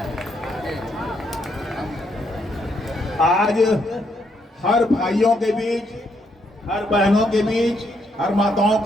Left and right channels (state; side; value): normal; both; correlation 0.75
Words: आज हर भाइयों के बीच, हर बहनों के बीच, हर माताओं